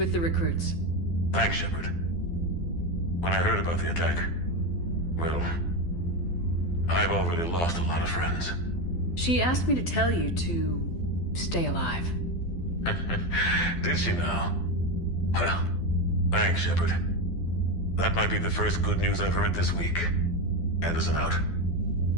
the recruits. Thanks, Shepard. When I heard about the attack, well, I've already lost a lot of friends. She asked me to tell you to stay alive. Did she now? Well, thanks, Shepard. That might be the first good news I've heard this week. Anderson out.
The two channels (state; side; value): late; right; 12 ms